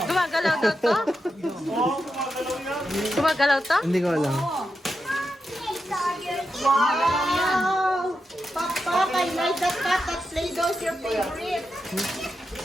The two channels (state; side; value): normal; both; correlation 0.87